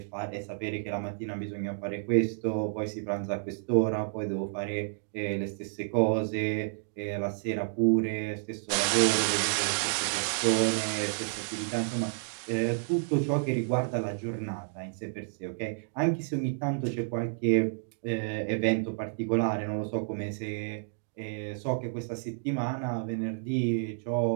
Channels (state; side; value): silent; left; digital silence